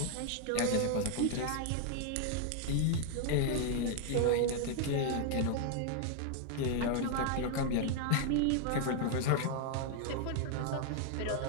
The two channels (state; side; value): different; both; correlation 0.00